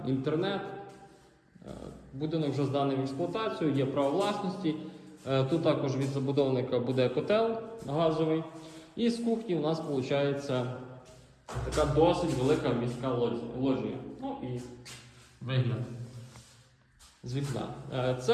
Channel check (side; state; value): both; identical; correlation 1.00